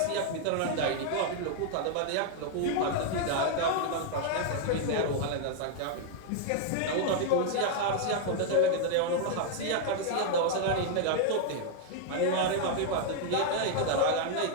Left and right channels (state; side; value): different; both; correlation 0.00